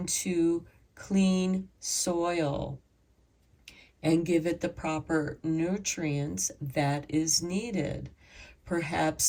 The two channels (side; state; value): both; identical; correlation 1.00